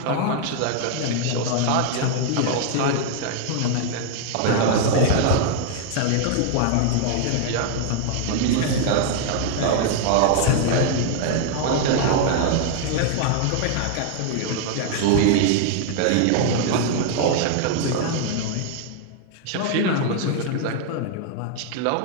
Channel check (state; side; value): different; both; correlation 0.00